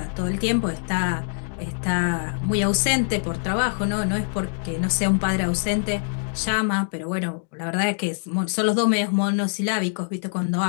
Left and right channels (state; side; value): silent; right; digital silence